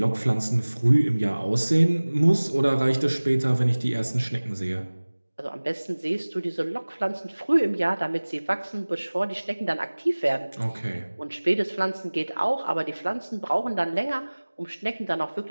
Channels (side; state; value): both; inverted; correlation -1.00